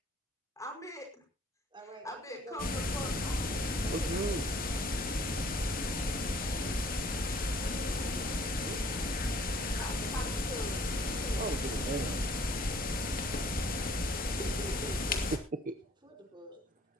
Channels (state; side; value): normal; both; correlation 0.57